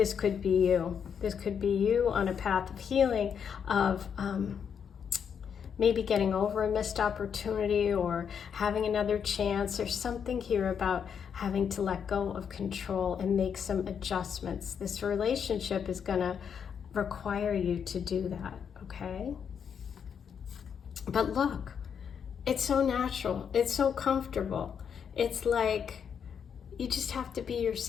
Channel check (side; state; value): right; quieter; 7.4 dB